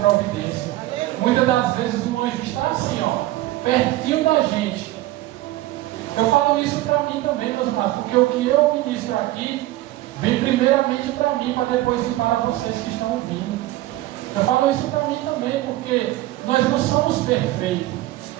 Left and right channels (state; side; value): quieter; left; 16.6 dB